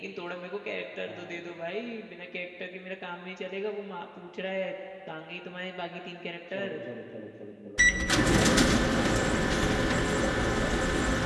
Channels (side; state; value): both; identical; correlation 1.00